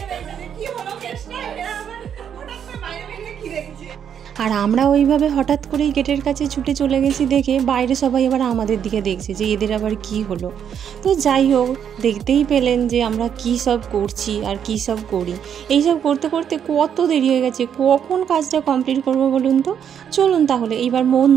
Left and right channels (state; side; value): quieter; left; 8.5 dB